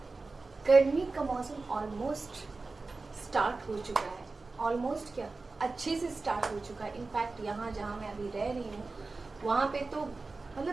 गर्मी का मौसम ऑलमोस्ट स्टार्ट हो चुका है। ऑलमोस्ट क्या, अच्छे से स्टार्ट हो चुका है। इनफैक्ट यहाँ जहाँ मैं अभी रह रही हूँ वहाँ पे तो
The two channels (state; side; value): quieter; left; 3.7 dB